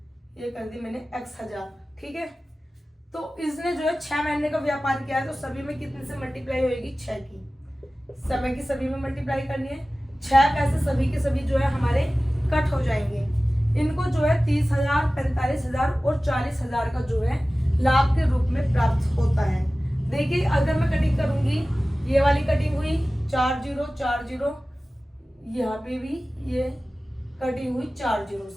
ये कर दी मैंने x 1,000। ठीक है, तो इसने जो है 6 महीने का व्यापार किया है, तो सभी में कितने से मल्टीप्लाई होगी, 6 की, समय की सभी में मल्टीप्लाई करनी है। 6 पैसे सभी के सभी जो है हमारे कट हो जाएंगे। इनको जो है 30,000, 45,000 और 40,000 का जो है लाभ के रूप में प्राप्त होता है। देखिए अगर मैं कटिंग करूंगी, ये वाली कटिंग हुई 4 जीरो 4 जीरो, यहाँ पे भी ये कटिंग हुई 4 जीरो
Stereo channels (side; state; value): both; normal; correlation 0.97